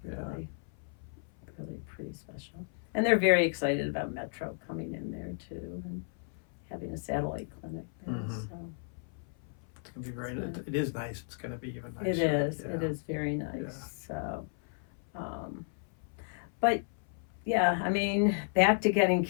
Really pretty special. And they're very excited about Metro coming in there too, and having a satellite clinic there. So it's gonna be great. It is nice. It's gonna be even nicer. It is. It is very nice. So, but yeah, I mean, back to getting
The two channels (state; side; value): silent; right; 55 dB below the other